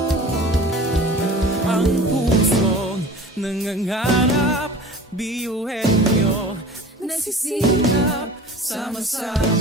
Ang pusong nangangarap, biyuhin nyo, nagsisikap,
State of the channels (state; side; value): normal; both; correlation 0.41